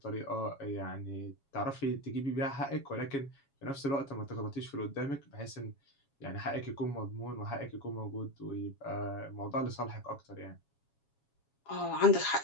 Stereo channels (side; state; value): right; late; 7.2 ms